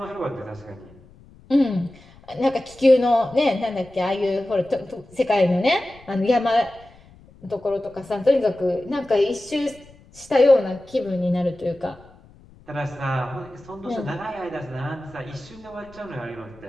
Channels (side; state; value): left; noise; rumble, 24 dB below the sound